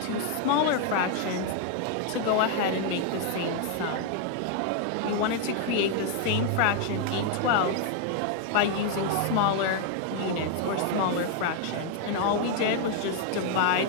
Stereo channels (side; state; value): both; different; correlation 0.00